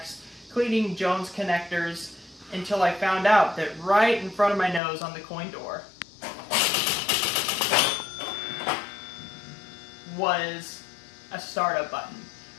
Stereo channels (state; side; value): drops out; right; at 4.8 s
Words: cleaning Jones connectors, until I found out that right in front of my nose on the coin door was a startup button.